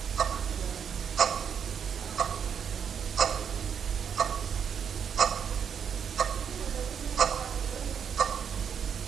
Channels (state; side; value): quieter; left; 7.6 dB